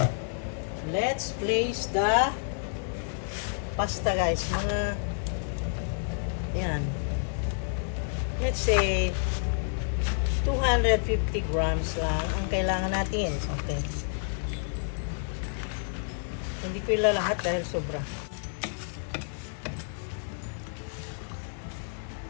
Let's place the pasta guys. Mga, ayan. Let's say, 250 grams lang ang kailangan natin. Okay. Hindi ko ilalahat dahil sobra.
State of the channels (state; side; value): silent; right; 58 dB below the other